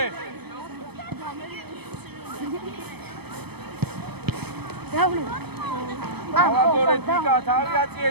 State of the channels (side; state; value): left; late; 0.97 ms